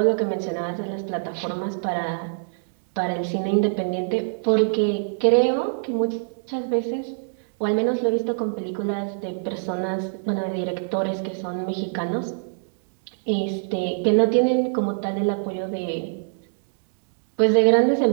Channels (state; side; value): silent; left; digital silence